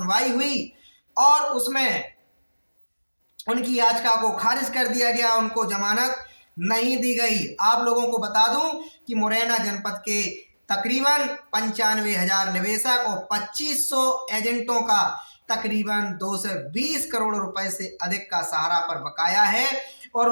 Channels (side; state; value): both; inverted; correlation -1.00